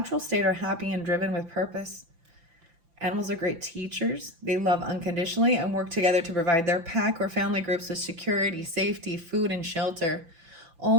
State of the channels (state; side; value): late; left; 5.9 ms